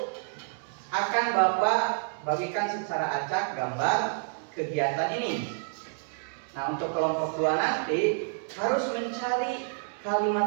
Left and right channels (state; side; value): silent; left; digital silence